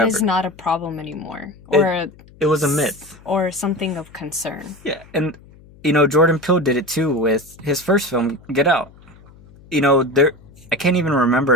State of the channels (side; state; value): left; noise; hum, 24 dB below the sound